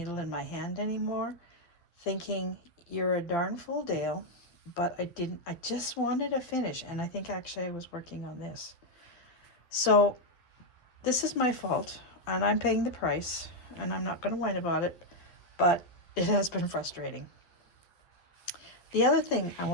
in my hand anymore, thinking, you're a darn fool, Dale, but I just wanted to finish, and I think actually I was working on this. So this is my fault, and I'm paying the price, and I'm not going to whine about it, but it has been frustrating. The other thing I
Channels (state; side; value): late; right; 12 ms